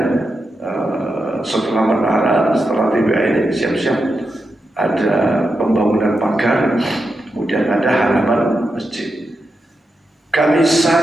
setelah menara, setelah TBA ini siap-siap ada pembangunan pagar, kemudian ada halaman masjid. Kami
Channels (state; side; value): normal; both; correlation 0.87